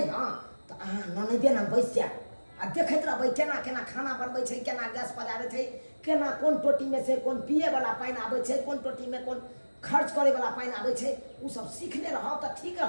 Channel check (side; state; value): both; inverted; correlation -1.00